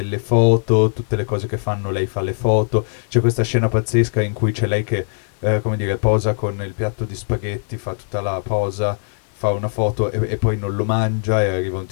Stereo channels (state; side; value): silent; right; 58 dB below the other